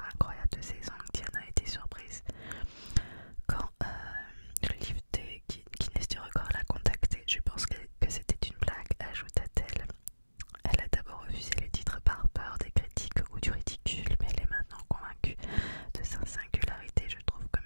incroyable de ses ongles, Diana était surprise quand le livre des Guinness du record l'a contactée. Je pense que c'était une blague, ajouta-t-elle. Elle a d'abord refusé les titres par peur des critiques ou du ridicule, mais elle est maintenant convaincue de sa singularité. Je trouve que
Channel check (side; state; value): both; inverted; correlation -1.00